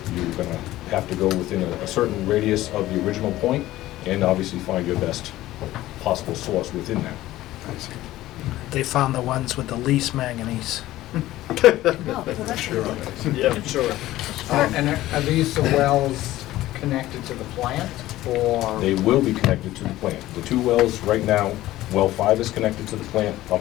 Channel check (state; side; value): quieter; right; 15.7 dB